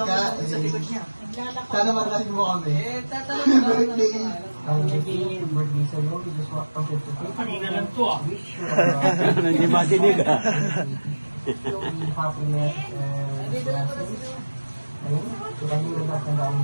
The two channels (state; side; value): inverted; both; correlation -1.00